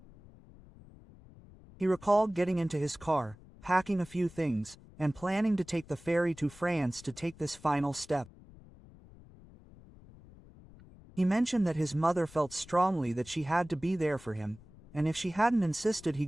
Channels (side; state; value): left; noise; rumble, 22 dB below the sound